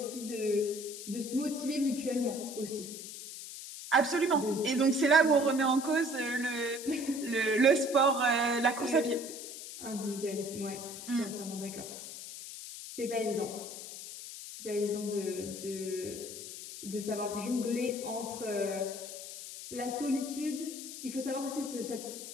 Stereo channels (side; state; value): left; noise; hiss, 10 dB below the sound